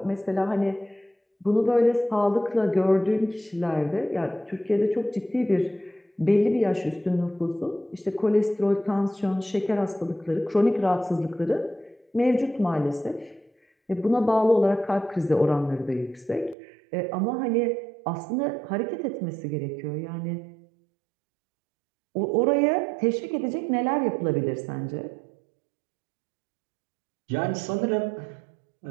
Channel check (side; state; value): left; drops out; at 16.6 s